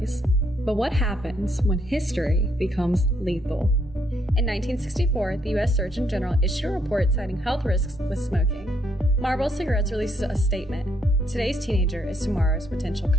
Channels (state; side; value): normal; both; correlation 0.72